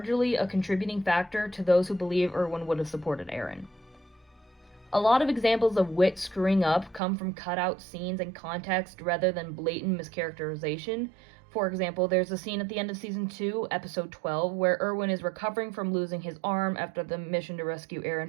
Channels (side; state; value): left; drops out; at 7.0 s